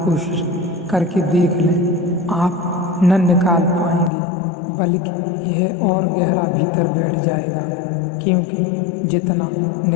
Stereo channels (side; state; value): right; drops out; at 4.1 s